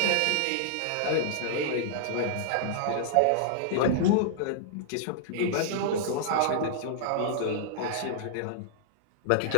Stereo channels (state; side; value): different; both; correlation -0.01